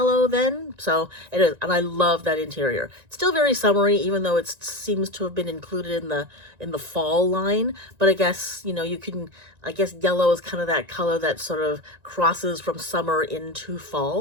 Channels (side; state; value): left; late; 1.9 ms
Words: then. So it is, and I love that interior. It's still very summery, even though it seems to have been included in the fall line. But I guess, you know, you can, I guess yellow is kind of that color that sort of crosses from summer into